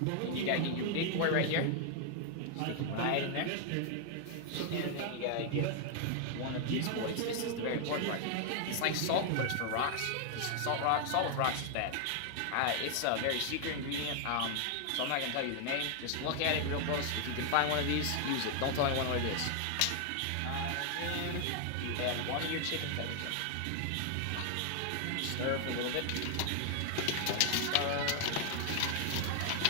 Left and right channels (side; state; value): both; different; correlation 0.00